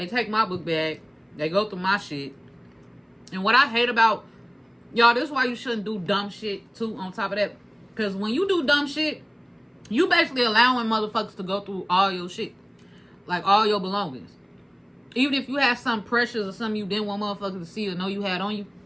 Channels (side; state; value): both; identical; correlation 1.00